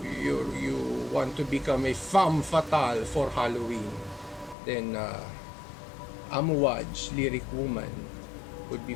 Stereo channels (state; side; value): drops out; right; at 4.5 s